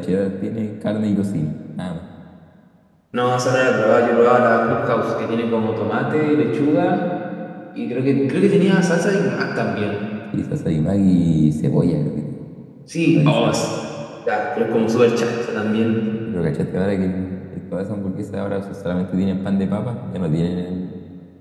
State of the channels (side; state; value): both; identical; correlation 1.00